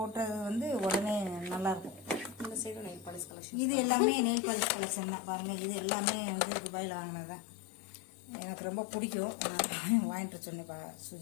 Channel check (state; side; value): drops out; right; at 3.3 s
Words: வந்து உடனே நல்லாயிருக்கும். இந்த சைடு நெயில் பாலிஷ் கலெக்ஷன். இது எல்லாமே நெயில் பாலிஷ் கலெக்ஷன் தான். பாருங்கள், இது எல்லாமே வந்து துபாயில் வாங்கினதான். எனக்கு ரொம்ப பிடிக்கும், நான் வாங்கிட்டு சொன்னேன்